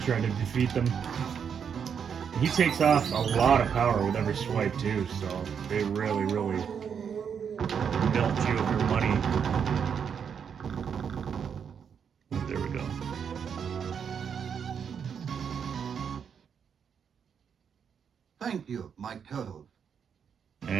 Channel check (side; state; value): left; quieter; 7.3 dB